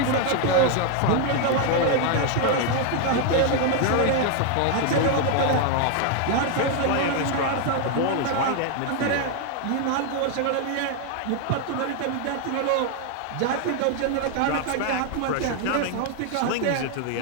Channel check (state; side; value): different; both; correlation 0.00